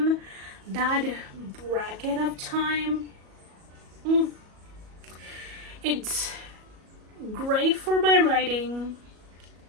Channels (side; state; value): left; late; 37 ms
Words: That bracket of time, it's great for my writing.